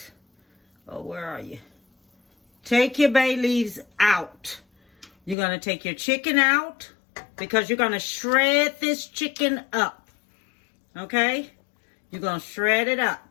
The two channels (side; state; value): right; drops out; at 5.4 s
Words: oh, where are you? Take your bay leaves out. You're going to take your chicken out because you're going to shred this chicken up, okay? You're going to shred it